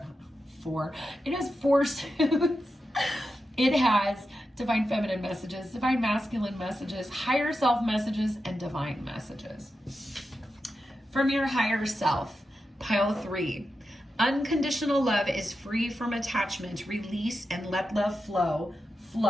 has 4 suits. It has divine feminine messages, divine masculine messages, higher self messages, and divine messages. From your higher self, pile 3. Unconditional love is free from attachment. Release and let love flow.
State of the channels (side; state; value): both; normal; correlation 0.89